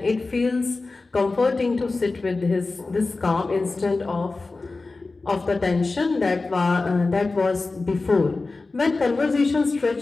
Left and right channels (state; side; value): quieter; right; 3.6 dB